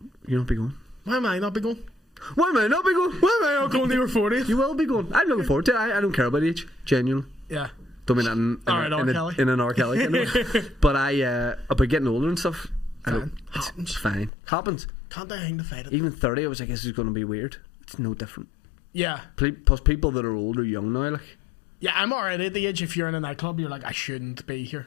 You not be going? Why am I not be going? Why am I not be going? Why am I not going to your 40th? You will be going. I'm looking forward to it. I don't care about age. Genuinely. Yeah. Don't mean that in an R. Kelly kind of way. But about getting older and stuff. It's fine. Happens. Can't I hang the fight? Even 30, I was like, this is going to be weird. It's no different. Yeah. Plus, people that are old are young now. Like, Yeah, I'm already at the age if you're in a nightclub, you're like, I shouldn't be here.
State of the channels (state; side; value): drops out; right; at 14.3 s